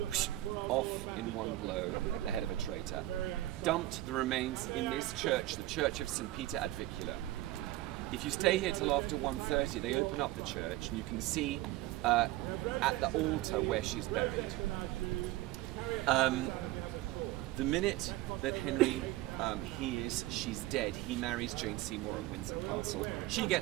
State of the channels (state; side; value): quieter; left; 16.7 dB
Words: off in one blow at the head of a traitor, dumped the remains in this church, the Church of St. Peter ad Vicula. If you stay here till after 1:30, they open up the church, and you can see at the altar where she's buried. The minute that Henry hears she's dead, he marries Jane Seymour at Windsor Castle. She